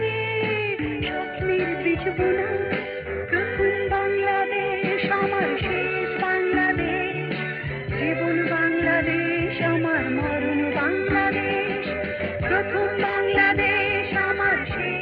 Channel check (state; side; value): identical; both; correlation 1.00